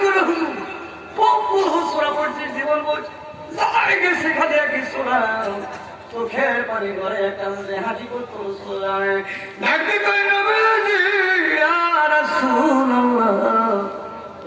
করে হুজুর বহু হুজুরা পড়ছে জীবন বলছে যাইকে সেখানে কি শোনা চোখের পানি করে কান্দে হাঁটি করতো সোলায় নাকি কই নবীজি ইয়া রাসূলুল্লাহ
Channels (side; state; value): both; identical; correlation 1.00